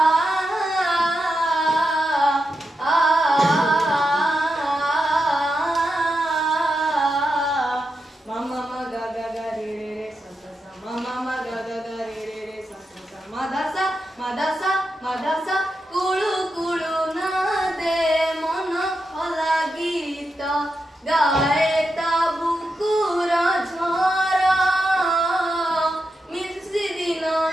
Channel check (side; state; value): both; normal; correlation 0.87